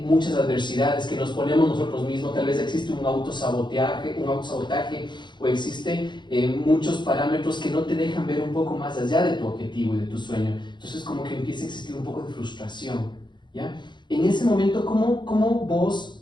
muchas adversidades que nos ponemos nosotros mismos, tal vez existe un autosabotaje o existen muchos parámetros que no te dejan ver un poco más allá de tu objetivo y de tu sueño. Entonces como que empieza a existir un poco de frustración, ¿ya? En ese momento, ¿cómo vos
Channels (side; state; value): right; late; 0.22 ms